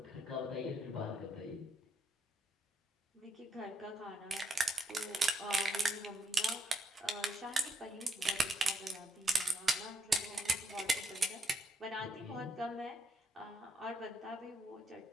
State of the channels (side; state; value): both; normal; correlation 0.74